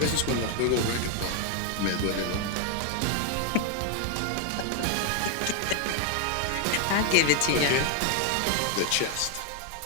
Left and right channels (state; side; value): different; both; correlation 0.01